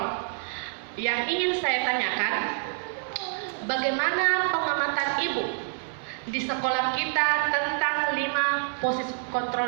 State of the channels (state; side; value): silent; left; 56 dB below the other